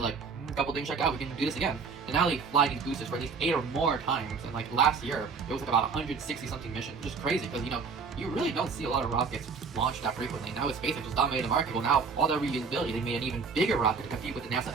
like, a couple things check out. We can do this again. And now they fly these boosters for at least 8 or more times. And like last year, it was like about 160 something missions, which is crazy because you really don't see a lot of rockets launched that frequently. Now with SpaxeX just dominated the market. Well, now all that reusability, they made an even bigger rocket to compete with the NASA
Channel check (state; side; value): quieter; left; 5.2 dB